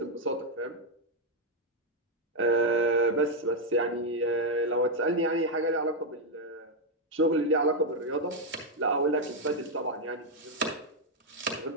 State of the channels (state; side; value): normal; both; correlation 0.01